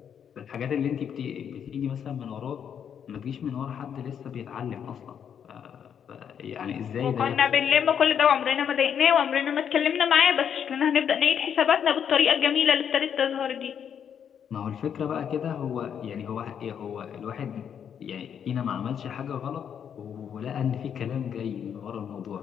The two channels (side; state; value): right; quieter; 8.2 dB